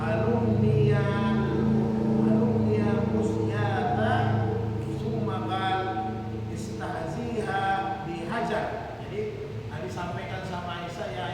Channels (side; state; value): both; identical; correlation 1.00